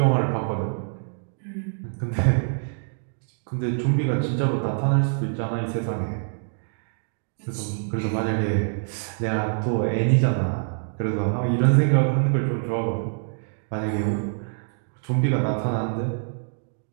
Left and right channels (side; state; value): left; silent; digital silence